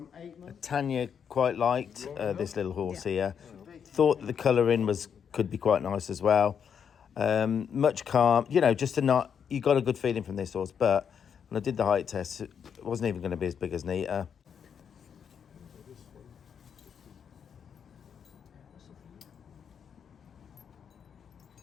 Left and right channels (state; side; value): quieter; right; 7.5 dB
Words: 8 months. Tanya quite liked this little horse here. Thought the colouring could be quite nice as well. Much calm, you know, just you got a good feeling from this horse. But when I did the height test, it wasn't even going to be as big as Nita.